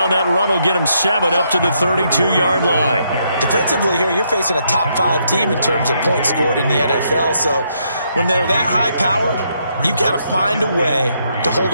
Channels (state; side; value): inverted; both; correlation -0.75